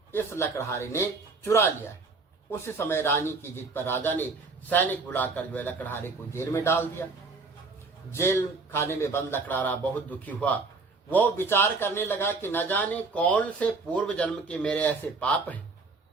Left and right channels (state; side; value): quieter; left; 4.0 dB